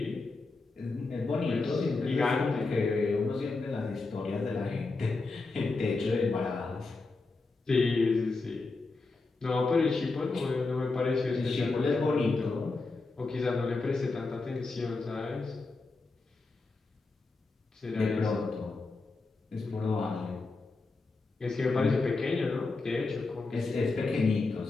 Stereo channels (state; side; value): quieter; right; 3.7 dB